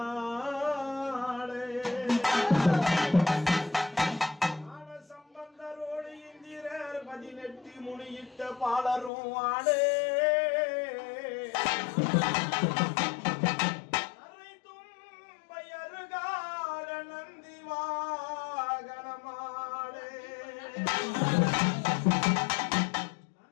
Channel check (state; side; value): drops out; right; at 9.1 s